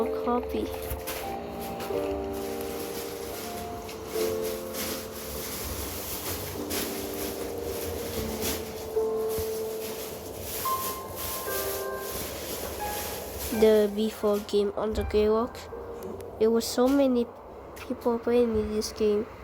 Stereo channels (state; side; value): identical; both; correlation 1.00